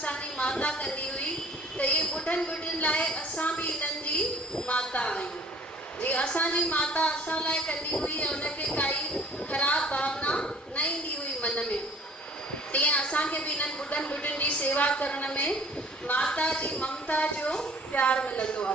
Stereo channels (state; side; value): normal; both; correlation 0.52